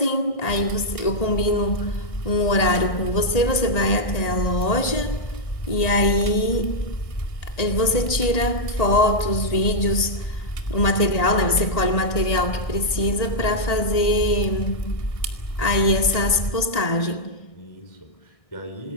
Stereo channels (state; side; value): late; right; 1.8 ms